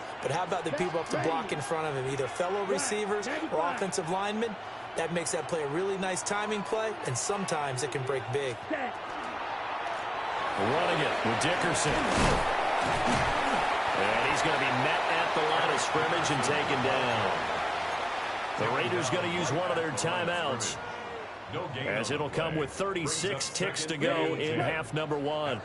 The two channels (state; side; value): identical; both; correlation 1.00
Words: But how about the people up to block in front of him, either fellow receivers or offensive linemen? That makes that play a really nice timing play, and sometimes it can break big. Running it with Dickerson. And he's going to be met at the line of scrimmage and taken down. The Raiders going to use one of their timeouts, as it'll come with 36 ticks to go in half number one.